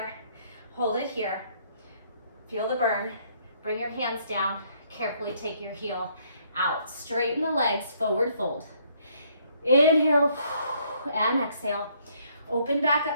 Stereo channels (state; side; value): inverted; both; correlation -0.67